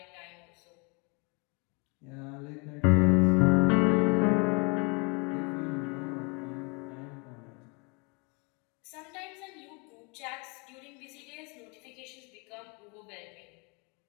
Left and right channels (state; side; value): quieter; right; 31.5 dB